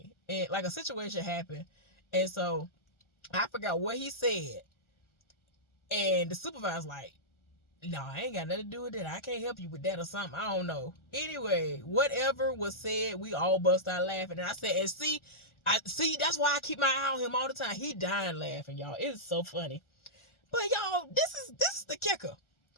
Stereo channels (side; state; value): right; late; 1.4 ms